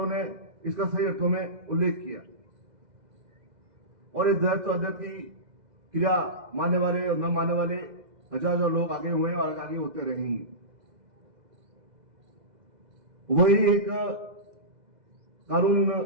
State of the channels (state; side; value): late; left; 2.0 ms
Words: ने इसका सही अर्थों में उल्लेख किया और इस द्वैत अद्वैत की क्रिया मानने वाले और न मानने वाले हजार लोग आगे हुए और आगे होते रहेंगे। वही एक कानून